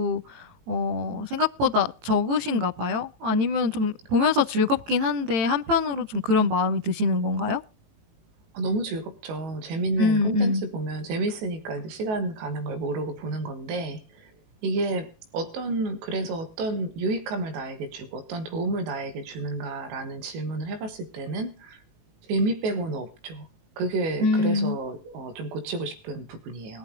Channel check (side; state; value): left; late; 18 ms